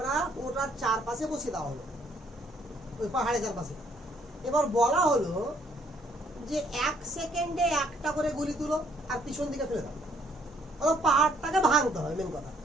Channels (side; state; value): both; normal; correlation 0.65